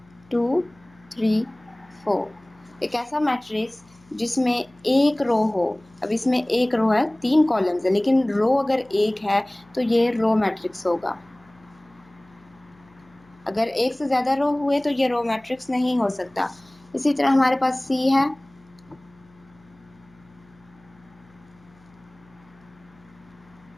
2 3 4। एक ऐसा मैट्रिक्स जिसमें एक रो हो। अब इसमें एक रो है, 3 कॉलम्स है, लेकिन रो अगर एक है तो ये रो मैट्रिक्स होगा। अगर एक से ज़्यादा रो हुए तो ये रो मैट्रिक्स नहीं हो सकता। इसी तरह हमारे पास सी है,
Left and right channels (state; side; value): noise; left; hum, 28 dB below the sound